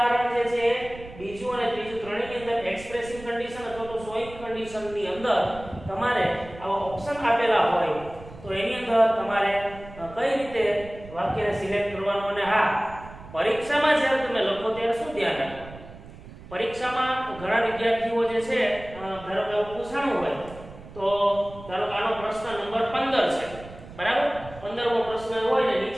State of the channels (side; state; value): right; noise; rumble, 17 dB below the sound